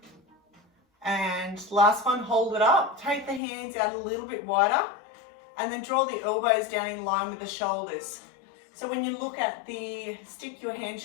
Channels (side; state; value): right; drops out; at 3.4 s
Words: And last one, hold it up. Take the hands out a little bit wider and then draw the elbows down in line with the shoulders. So when you look at the stick, your hand